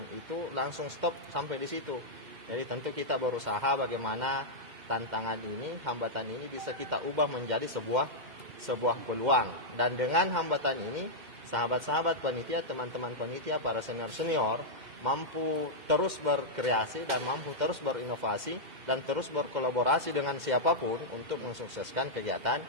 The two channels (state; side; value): late; left; 2.1 ms